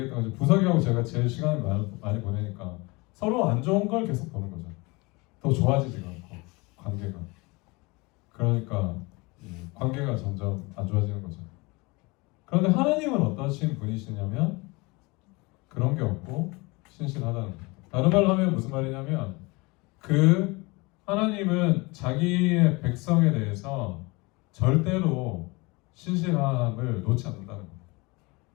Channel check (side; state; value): right; quieter; 25.6 dB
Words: 것처럼 부석이하고 제가 제일 시간을 많이 보내니까 서로 안 좋은 걸 계속 보는 거죠. 더 좋아지지가 않고 관계가. 그러니까 관계가 점점 안 좋아지는 거죠. 그런데 하나님은 어떠신 분이시냐면 그런 게 없고 신실하다는 거예요. 다른 말로 하면 무슨 말이냐면 하나님은 자기의 백성에 대해서 절대로 신실함을 놓지 않는다는 겁니다.